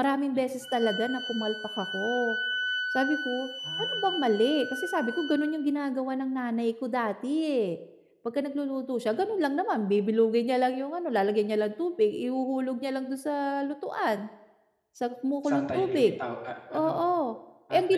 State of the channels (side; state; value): both; identical; correlation 1.00